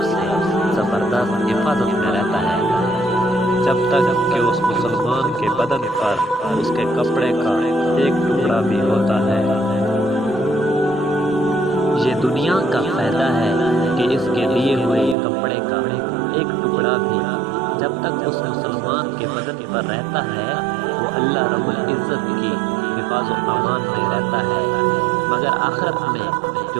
سے زبردست حفاظت میں رہتا ہے جب تک کہ اس مسلمان کے بدن پر اس کے کپڑے کا ایک ٹکڑا بھی ہوتا ہے۔ یہ دنیا کا فائدہ ہے کہ اس کے لیے ہوئے کپڑے کا ایک ٹکڑا بھی جب تک اس مسلمان کے بدن پر رہتا ہے وہ اللہ رب العزت کی حفاظ و امان میں رہتا ہے، مگر آخرت میں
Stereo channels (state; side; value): drops out; left; at 15.2 s